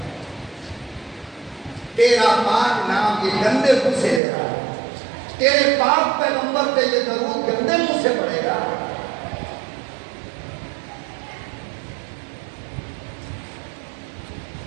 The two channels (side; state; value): left; drops out; at 4.2 s